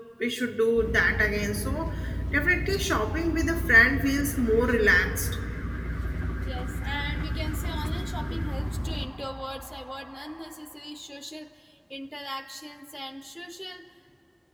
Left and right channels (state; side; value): identical; both; correlation 1.00